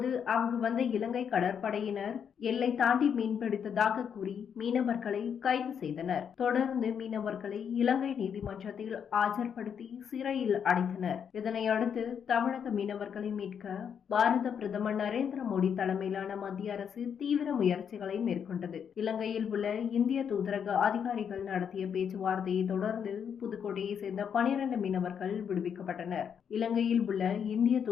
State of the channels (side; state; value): right; quieter; 7.6 dB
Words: அங்கு வந்த இலங்கை கடற்படையினர் எல்லை தாண்டி மீன்பிடித்ததாக கூறி மீனவர்களை கைது செய்தனர். தொடர்ந்து மீனவர்களை இலங்கை நீதிமன்றத்தில் ஆஜர்படுத்தி சிறையில் அடைத்தனர். இதனையடுத்து தமிழக மீனவர்களை மீட்க பாரத பிரதமர் நரேந்திர மோடி தலைமையிலான மத்திய அரசு தீவிர முயற்சிகளை மேற்கொண்டது. இலங்கையில் உள்ள இந்திய தூதரக அதிகாரிகள் நடத்திய பேச்சுவார்த்தையை தொடர்ந்து புதுக்கோட்டையை சேர்ந்த 12 மீனவர்கள் விடுவிக்கப்பட்டனர். இலங்கையில் உள்ள இந்திய